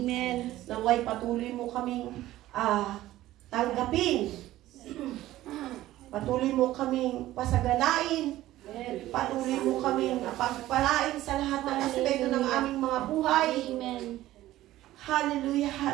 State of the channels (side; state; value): left; quieter; 15.2 dB